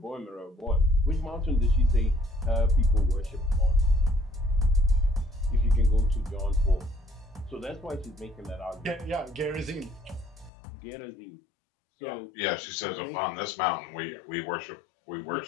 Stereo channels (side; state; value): right; drops out; at 10.5 s